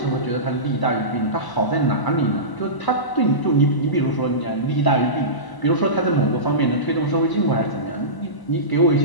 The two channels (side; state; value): right; late; 1.0 ms